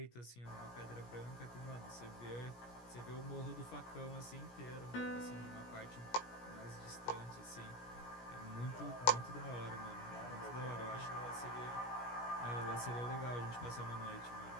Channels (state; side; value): late; right; 17 ms